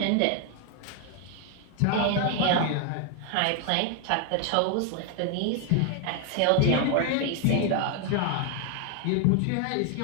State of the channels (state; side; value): different; both; correlation 0.01